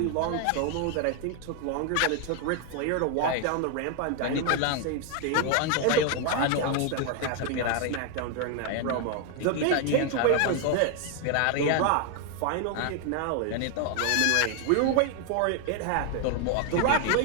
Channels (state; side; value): different; both; correlation 0.01